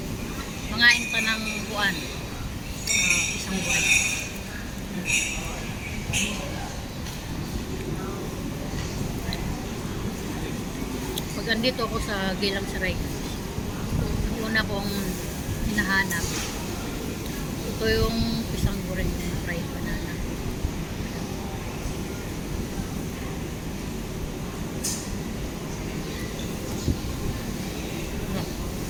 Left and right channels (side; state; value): both; identical; correlation 1.00